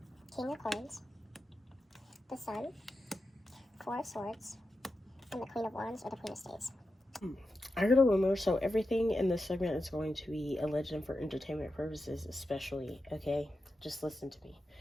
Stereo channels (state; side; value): normal; both; correlation 0.90